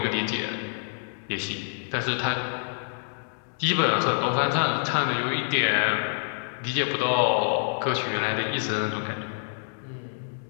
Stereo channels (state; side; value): silent; right; digital silence